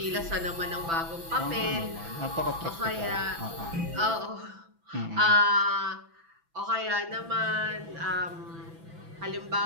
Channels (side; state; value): left; late; 6.0 ms